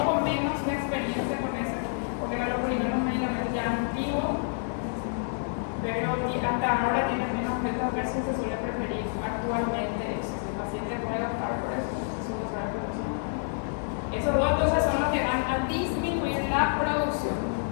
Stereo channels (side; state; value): right; silent; digital silence